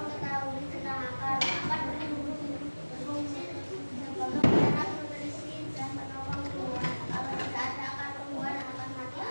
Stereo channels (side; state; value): both; inverted; correlation -1.00